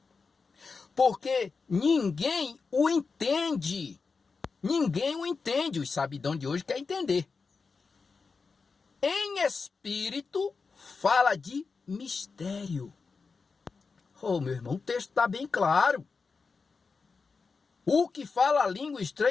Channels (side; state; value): right; quieter; 4.7 dB